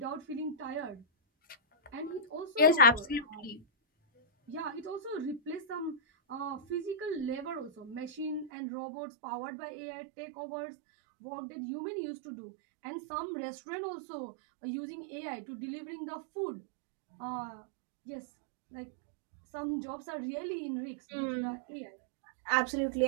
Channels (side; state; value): left; drops out; at 8.5 s